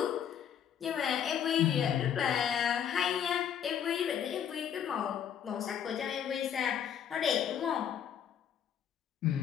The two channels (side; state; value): right; quieter; 8.8 dB